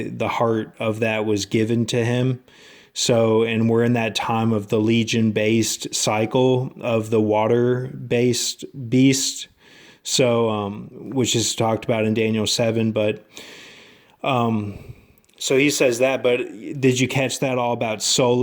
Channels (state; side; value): identical; both; correlation 1.00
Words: heart of that was given to him. So, and we're in that time of the Legion-based cycle of the water-based beast. So, which is talked about in Daniel 7. But, so he says that. But did you catch that all about